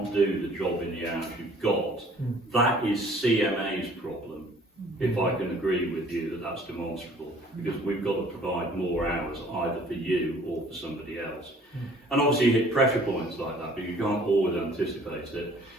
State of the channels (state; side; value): normal; both; correlation 0.54